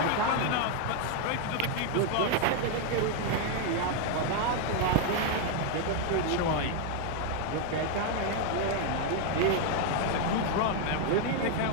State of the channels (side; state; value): both; different; correlation 0.00